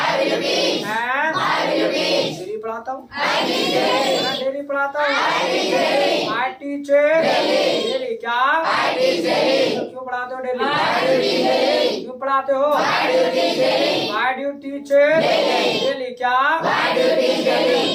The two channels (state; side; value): identical; both; correlation 1.00